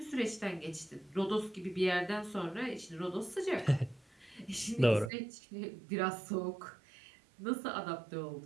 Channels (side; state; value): left; drops out; at 5.1 s